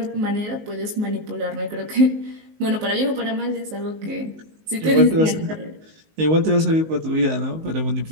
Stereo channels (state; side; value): late; left; 19 ms